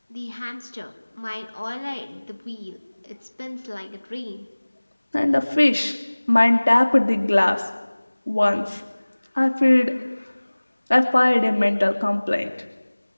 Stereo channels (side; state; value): both; inverted; correlation -1.00